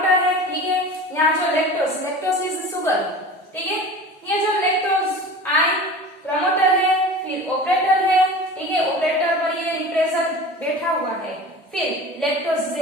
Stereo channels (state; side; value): normal; both; correlation 0.36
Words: है, ठीक है, यहाँ जो लैक्टोज इज शुगर, ठीक है, ये जो लैक्टोज आई प्रमोटर है, फिर ऑपरेटर है, ठीक है, ऑपरेटर पर ये रिप्रेसर बैठा हुआ है, फिर lactose